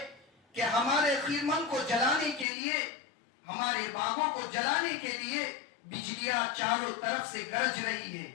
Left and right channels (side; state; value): right; drops out; at 2.5 s